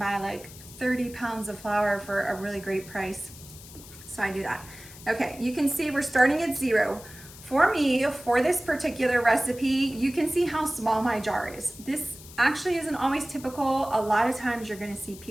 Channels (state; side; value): noise; left; hiss, 18 dB below the sound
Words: like 30 pounds of flour for a really great price. So I do that. Okay, you can see we're starting at 0. For me, for this particular recipe, you can see how small my jar is. This actually isn't always typical. A lot of times you're gonna see